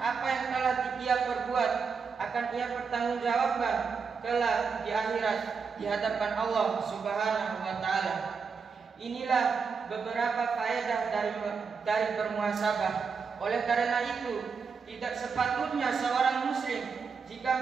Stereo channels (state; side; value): quieter; left; 5.6 dB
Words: yang telah dia perbuat akan ia pertanggungjawabkan kelak di akhirat di hadapan Allah Subhanahu wa taala. Inilah beberapa faedah dari bermuhasabah. Oleh karena itu, tidak sepatutnya seorang muslim jika